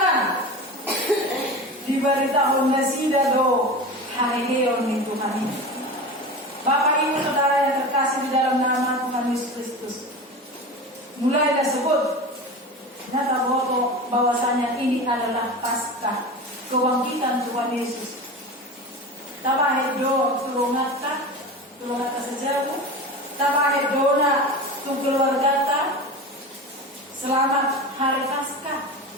Diberitahu Nasida do Haeon ni Tuhan ini. Bapak Ibu Saudara yang terkasih di dalam nama Tuhan Yesus Kristus, mulai disebut nyata bahwasanya ini adalah Paskah, kebangkitan Tuhan Yesus. Tabahedo tulungata sejaru, tabahedona tung keluargata. Selamat hari Paskah,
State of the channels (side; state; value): both; normal; correlation 0.29